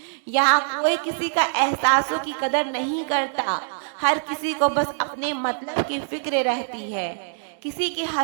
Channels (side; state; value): left; silent; 63 dB below the other